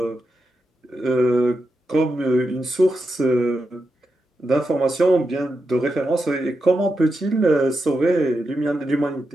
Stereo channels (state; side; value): normal; both; correlation 0.87